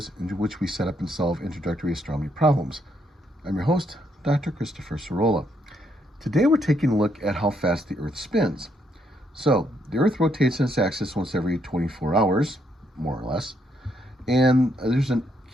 in which we set up and solve introductory astronomy problems. I'm your host, Dr. Christopher Sorolla. Today we're taking a look at how fast the Earth spins. So, the Earth rotates on its axis once every 24 hours, more or less, and there's an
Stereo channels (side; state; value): both; normal; correlation 0.74